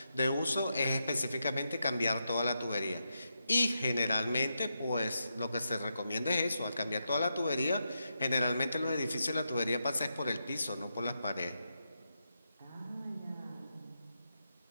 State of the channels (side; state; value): both; inverted; correlation -0.85